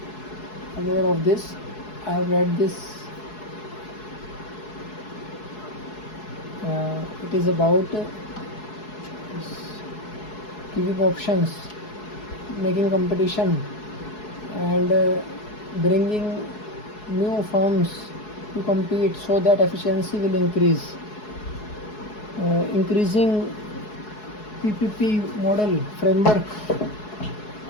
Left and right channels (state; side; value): late; right; 4.7 ms